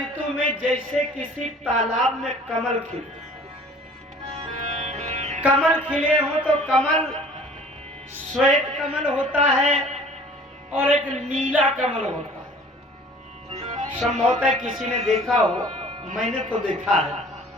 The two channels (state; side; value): normal; both; correlation 0.49